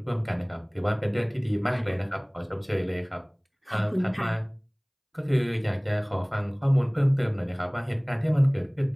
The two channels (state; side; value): identical; both; correlation 1.00